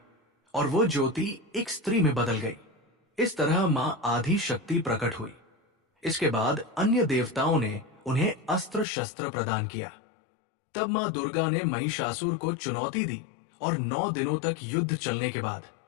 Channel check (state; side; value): drops out; right; at 8.8 s